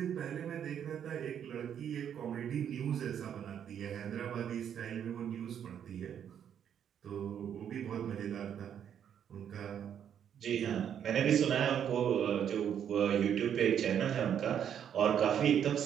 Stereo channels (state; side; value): quieter; left; 9.0 dB